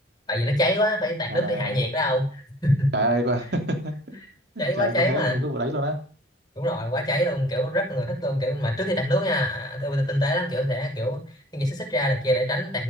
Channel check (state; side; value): normal; both; correlation 0.48